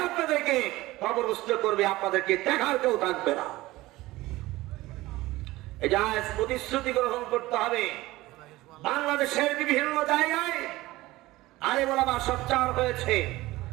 আপনাদেরকে কবরস্থ করবে, আপনাদেরকে দেখার কেউ থাকবে না। এটা প্রতিশ্রুতি গ্রহণ করতে হবে। বাংলাদেশের বিভিন্ন জায়গায় আলেম ওলামা সোচ্চার হয়েছে।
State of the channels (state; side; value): quieter; left; 18.4 dB